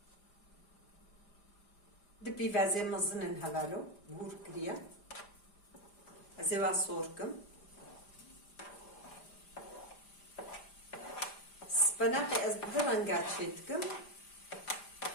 دبي فازي مزنن هلالو بور كريا ازيوا صوركم سبناقي ازدرنقات شيتكم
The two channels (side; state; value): right; late; 5.0 ms